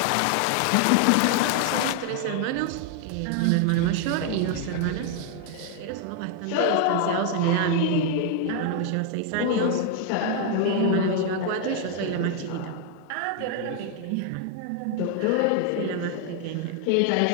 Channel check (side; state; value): both; different; correlation 0.00